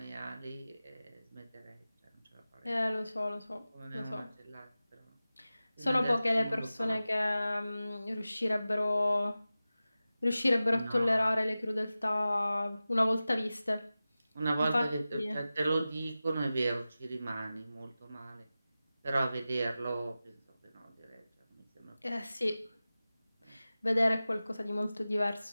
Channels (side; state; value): both; inverted; correlation -0.95